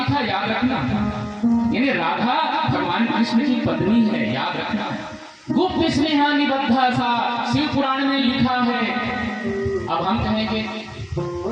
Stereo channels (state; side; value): identical; both; correlation 1.00